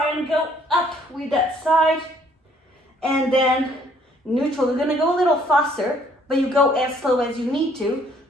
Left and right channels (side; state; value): both; normal; correlation 0.62